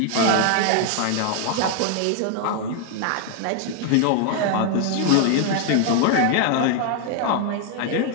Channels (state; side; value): different; both; correlation 0.00